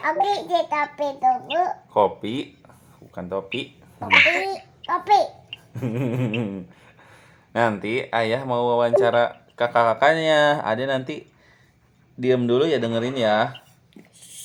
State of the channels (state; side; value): identical; both; correlation 1.00